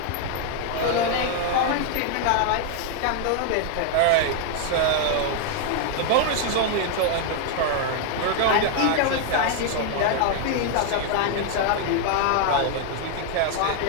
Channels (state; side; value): different; both; correlation 0.00